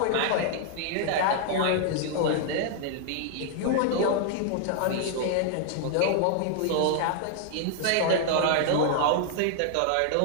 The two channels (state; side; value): different; both; correlation -0.01